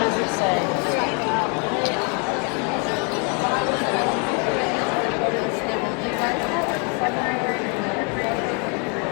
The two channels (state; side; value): quieter; right; 35.8 dB